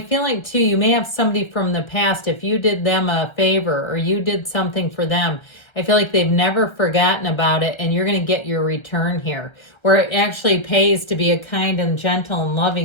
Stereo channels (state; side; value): late; right; 1.3 ms